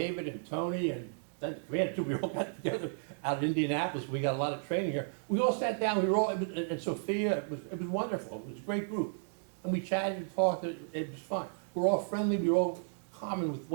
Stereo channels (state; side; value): silent; left; digital silence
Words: and Tony and then the commander too, we all got together out in Indianapolis, we got a lot of training here. We all sat down, we were all, and Sophia, it was wonderful, it was a great group. And we chatted and talked, it was fun. We're all friendly, we were all common with